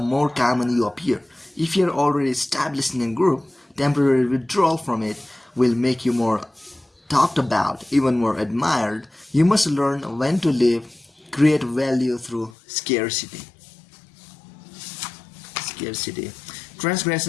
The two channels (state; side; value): drops out; right; at 12.6 s